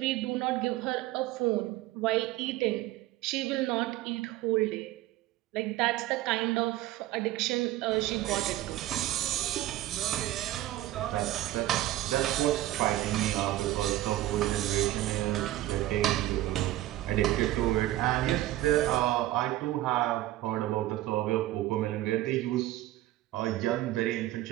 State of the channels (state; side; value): quieter; left; 15.4 dB